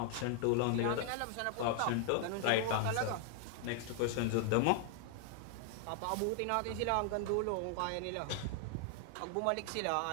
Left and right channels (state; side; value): different; both; correlation 0.00